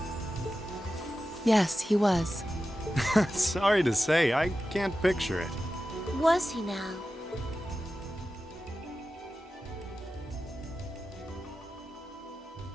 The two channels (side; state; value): both; normal; correlation 0.93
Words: Yes, he was. Sorry to say, I can't picture it. Was he now?